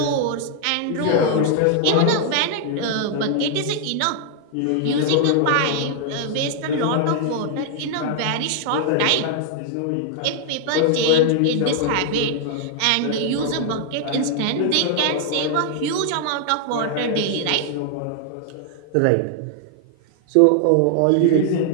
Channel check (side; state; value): both; different; correlation 0.00